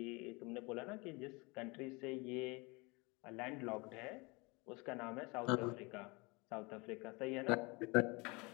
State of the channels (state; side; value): quieter; right; 26.8 dB